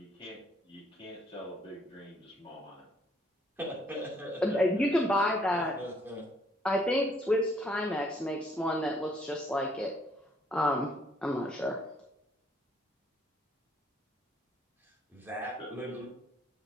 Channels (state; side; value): normal; both; correlation 0.66